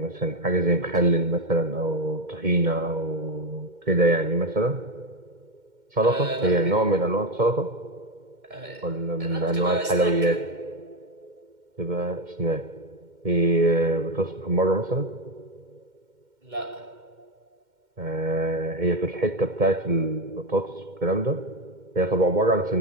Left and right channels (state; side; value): late; left; 2.1 ms